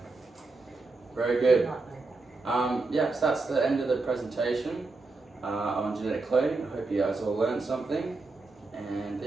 Very good. Not like that. Yeah, so that's the end of the presentation on genetic cloning. I hope you guys all learned something, and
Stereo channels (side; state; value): left; quieter; 3.6 dB